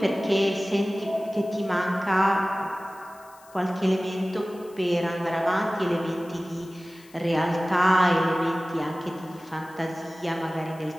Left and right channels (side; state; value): left; noise; hiss, 26 dB below the sound